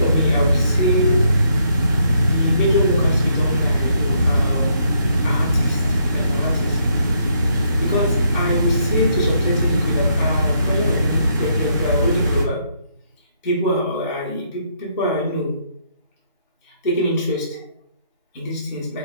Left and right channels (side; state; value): both; inverted; correlation -0.72